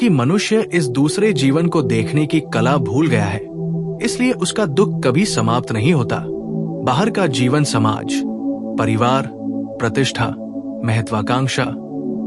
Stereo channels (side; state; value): both; identical; correlation 1.00